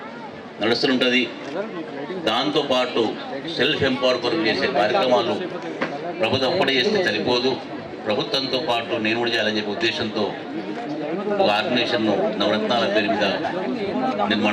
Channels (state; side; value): identical; both; correlation 1.00